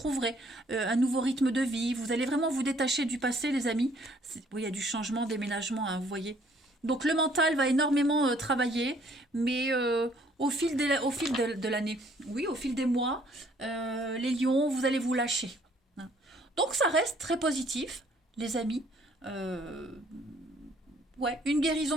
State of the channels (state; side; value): normal; both; correlation 0.62